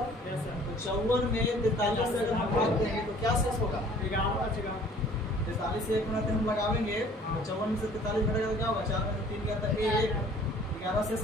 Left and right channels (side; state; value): both; normal; correlation 0.53